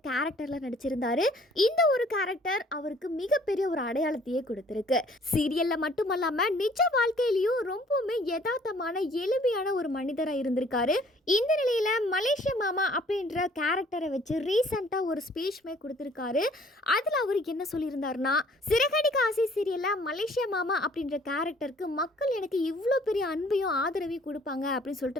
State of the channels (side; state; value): both; normal; correlation 0.57